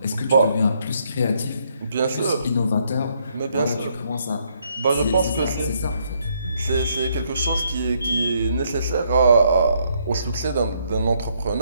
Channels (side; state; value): both; inverted; correlation -0.72